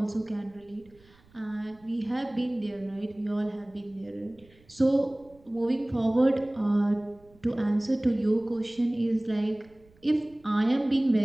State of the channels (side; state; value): right; noise; rumble, 29 dB below the sound